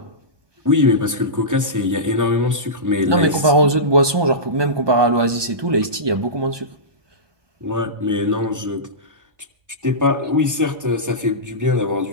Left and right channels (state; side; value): late; left; 1.2 ms